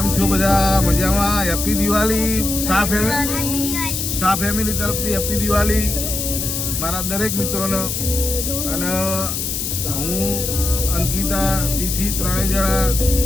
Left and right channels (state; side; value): noise; left; hiss, 3 dB below the sound